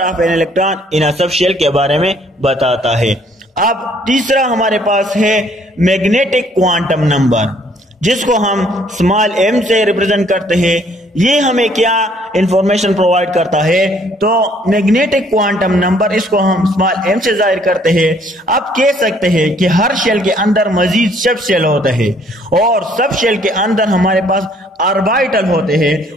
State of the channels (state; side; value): normal; both; correlation 0.62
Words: of an electron in a subshell के बारे में बताता है। अब तीसरा हमारे पास है मैग्नेटिक क्वांटम नंबर, जिसको हम स्मॉल m से रिप्रेजेंट करते हैं। ये हमें क्या इंफॉर्मेशन प्रोवाइड करता है? तो मैग्नेटिक क्वांटम नंबर, इसको हम स्मॉल m से जाहिर करते हैं। अब कह सकते हैं कि हर शेल के अंदर मजीद सब शेल होते हैं, और सब शेल के अंदर हमारे पास ऑर्बिटल होते हैं,